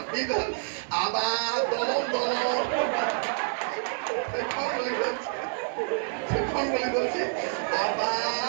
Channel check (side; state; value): left; silent; 59 dB below the other